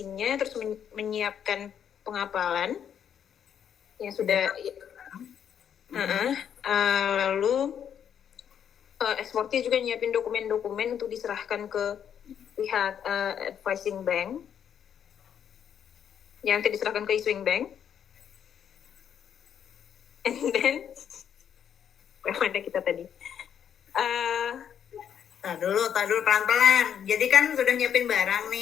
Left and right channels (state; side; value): quieter; right; 8.7 dB